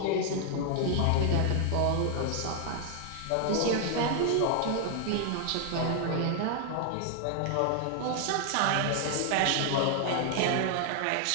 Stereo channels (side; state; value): both; different; correlation 0.00